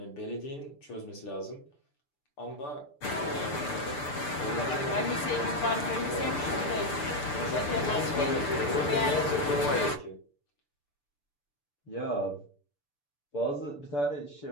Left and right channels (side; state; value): right; late; 6.8 ms